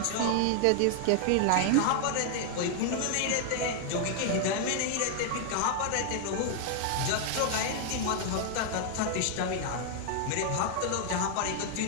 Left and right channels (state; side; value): different; both; correlation 0.00